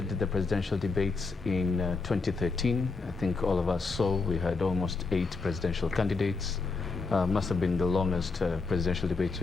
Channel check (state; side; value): quieter; right; 4.1 dB